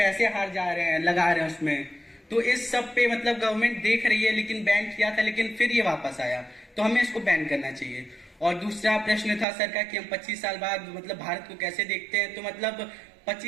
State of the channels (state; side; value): drops out; left; at 9.5 s